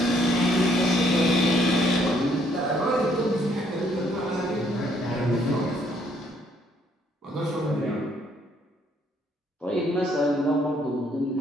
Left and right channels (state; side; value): normal; both; correlation 0.68